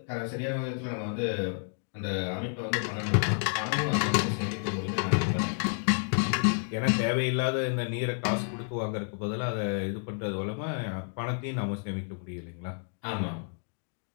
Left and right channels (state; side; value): silent; right; 58 dB below the other